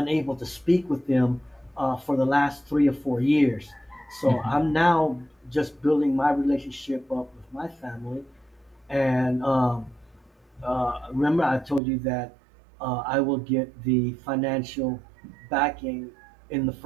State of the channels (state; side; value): drops out; left; at 11.8 s